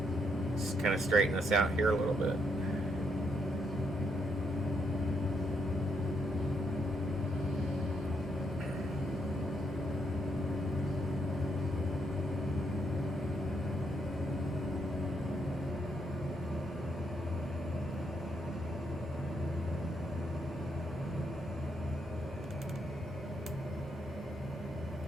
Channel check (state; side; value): normal; both; correlation 0.76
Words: Just kind of straighten this out here a little bit.